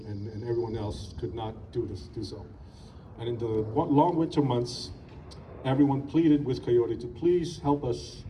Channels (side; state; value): both; identical; correlation 1.00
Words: and everyone else could not do so. And in the long winter months, everyone pleaded with Coyote to please help us